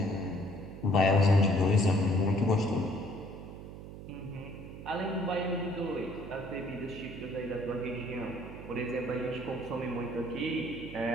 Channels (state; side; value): noise; right; hum, 12 dB below the sound